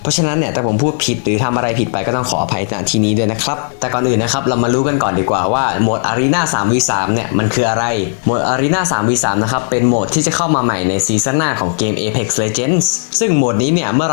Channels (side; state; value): right; silent; digital silence